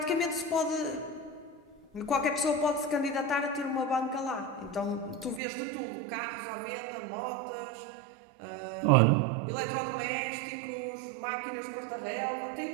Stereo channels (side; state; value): left; drops out; at 5.4 s